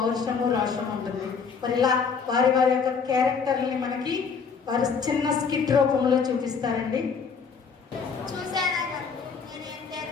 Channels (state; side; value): quieter; right; 5.8 dB